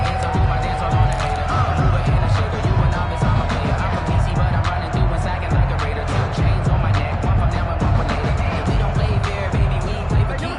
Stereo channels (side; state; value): both; identical; correlation 1.00